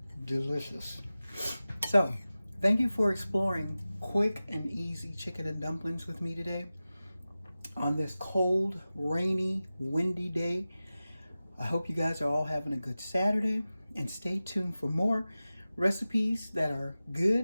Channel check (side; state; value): both; inverted; correlation -0.96